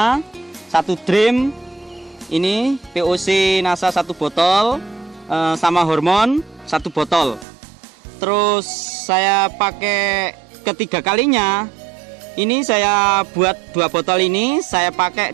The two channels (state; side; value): drops out; left; at 7.5 s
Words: 1 drim, ini POC NASA 1 botol, sama hormon 1 botol. Terus saya pakai ketiga kalinya, ini saya buat 2 botol ini saya pakai